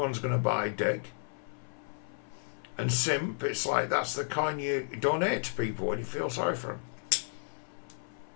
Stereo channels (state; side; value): silent; right; 56 dB below the other